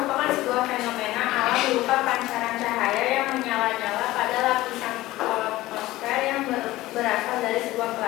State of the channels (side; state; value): right; quieter; 17.2 dB